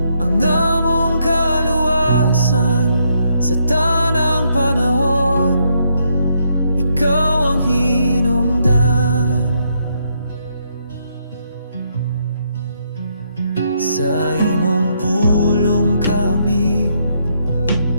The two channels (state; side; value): inverted; both; correlation -0.75